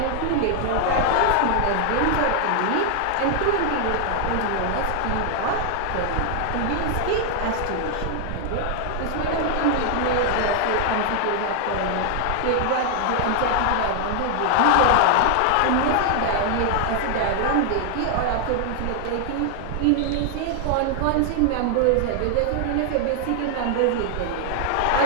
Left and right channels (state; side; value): different; both; correlation 0.00